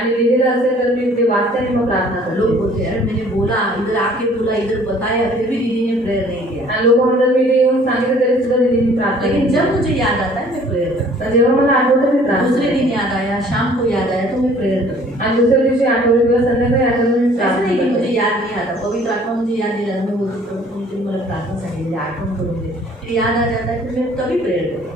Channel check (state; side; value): normal; both; correlation 0.55